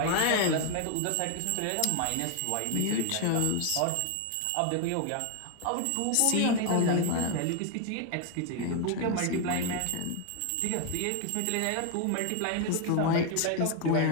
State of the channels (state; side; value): different; both; correlation 0.01